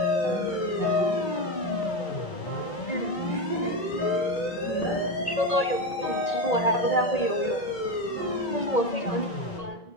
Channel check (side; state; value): right; late; 1.8 ms